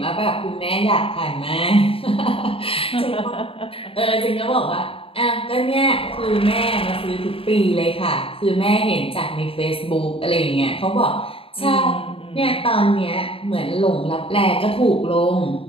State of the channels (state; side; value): late; right; 0.27 ms